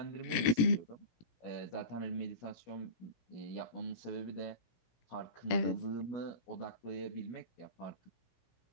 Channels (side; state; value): right; late; 18 ms